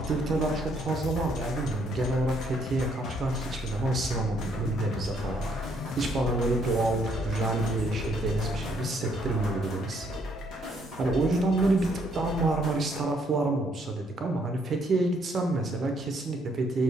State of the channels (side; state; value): both; normal; correlation 0.69